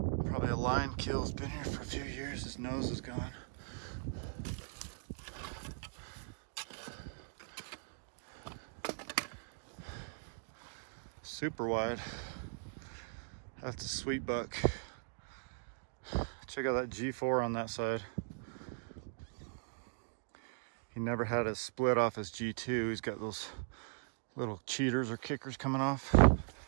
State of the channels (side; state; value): left; silent; digital silence